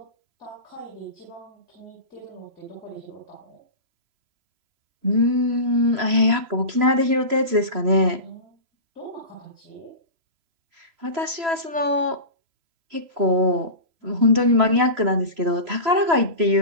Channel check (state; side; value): late; left; 3.0 ms